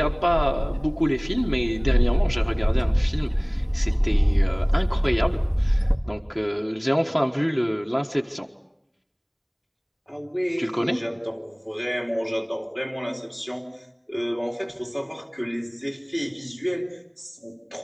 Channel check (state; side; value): identical; both; correlation 1.00